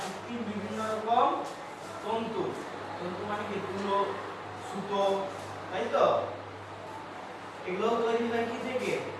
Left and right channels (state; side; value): identical; both; correlation 1.00